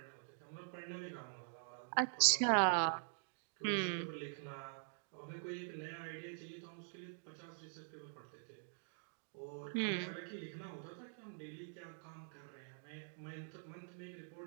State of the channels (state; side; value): silent; left; digital silence